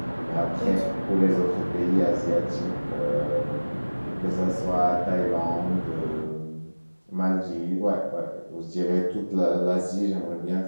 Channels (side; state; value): both; inverted; correlation -1.00